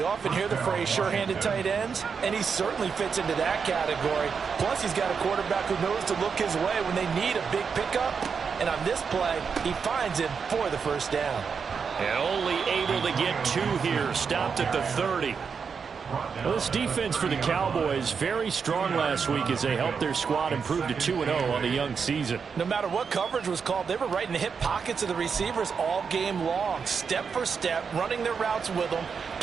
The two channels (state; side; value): quieter; left; 6.0 dB